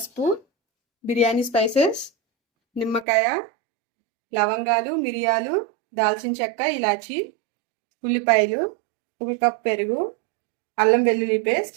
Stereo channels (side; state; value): left; drops out; at 3.1 s